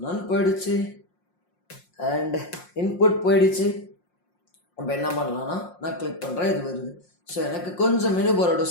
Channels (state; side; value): late; right; 5.6 ms